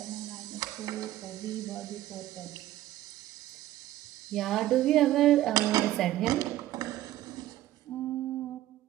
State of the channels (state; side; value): quieter; left; 14.5 dB